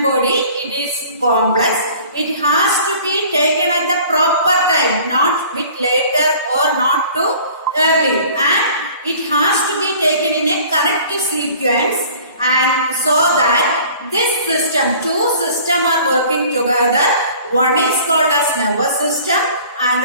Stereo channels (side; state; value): both; inverted; correlation -0.48